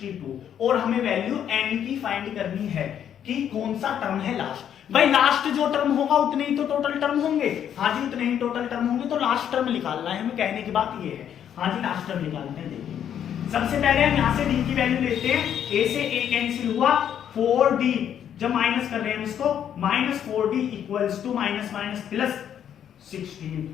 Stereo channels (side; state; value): right; quieter; 9.4 dB